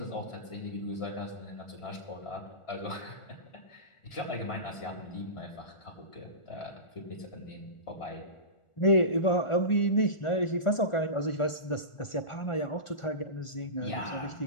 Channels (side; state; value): right; late; 1.4 ms